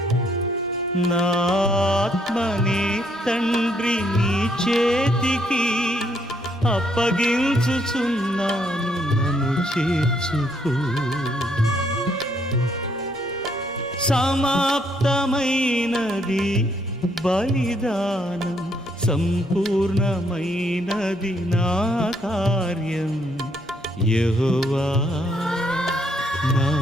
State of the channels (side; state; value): both; normal; correlation 0.71